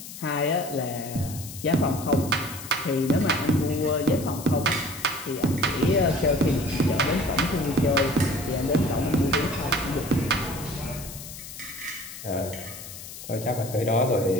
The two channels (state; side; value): noise; left; hiss, 12 dB below the sound